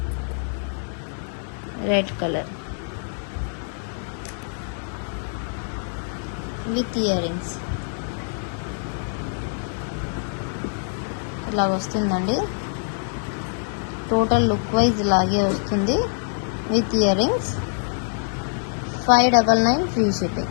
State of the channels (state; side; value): silent; right; digital silence